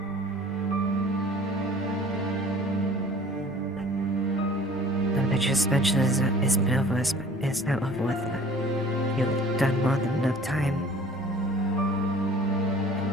your suspension is been over, is now over with. You've done more than enough time.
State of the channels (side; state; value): both; normal; correlation 0.49